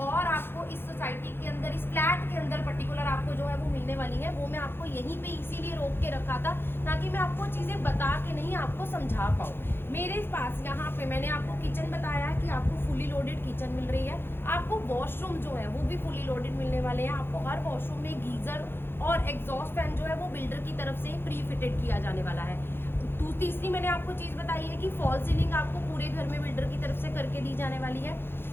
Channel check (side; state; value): right; late; 0.11 ms